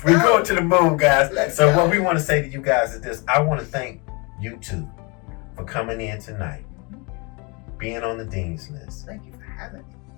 going to the moon, guys. So what we want to say to you guys is this: I want to thank you two for coming in tonight, being on the Dean's List. Thank you for having me.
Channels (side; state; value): right; quieter; 30.2 dB